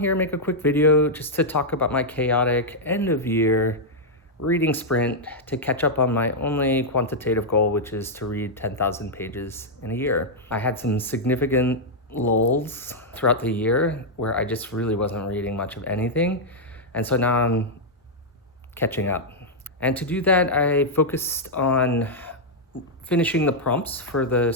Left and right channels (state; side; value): normal; both; correlation -0.04